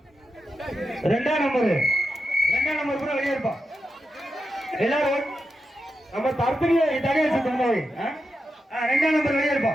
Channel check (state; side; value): normal; both; correlation 0.88